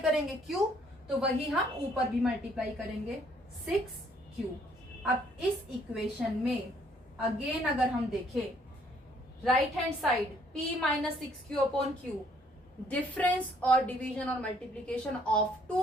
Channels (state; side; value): normal; both; correlation 0.64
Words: Q, तो वही हम ऊपर भी मल्टीप्लाई करेंगे 6Q। अब इस इक्वेशन में अगेन अगर हम देखें right hand side P - 6Q upon Q, difference और डिवीजन और multiplication of